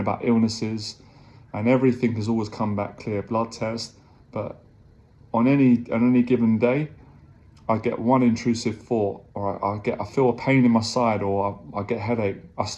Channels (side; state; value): both; identical; correlation 1.00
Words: illnesses, and everything has always come back clear, blood test. But on any given day, I get one intrusive thought, or I feel a pain in my side, or I get a headache. I